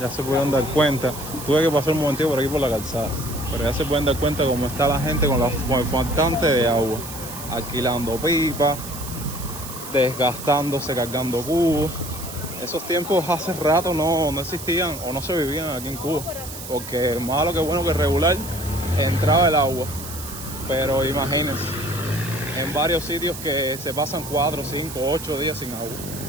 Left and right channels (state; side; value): noise; right; hiss, 11 dB below the sound